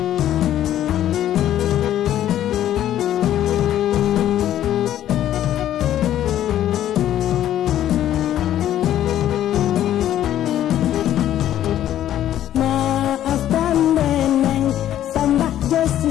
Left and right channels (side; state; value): right; quieter; 11.8 dB